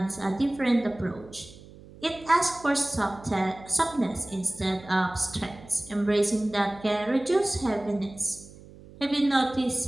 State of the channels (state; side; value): noise; right; hum, 20 dB below the sound